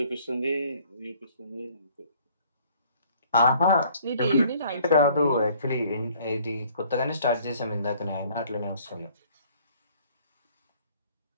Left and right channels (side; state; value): both; inverted; correlation -0.58